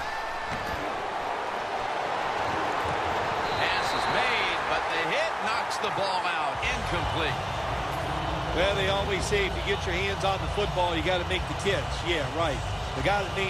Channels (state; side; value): identical; both; correlation 1.00